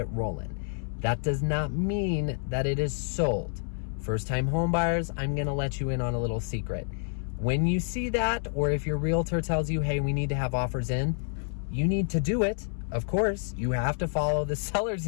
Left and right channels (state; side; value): silent; right; 59 dB below the other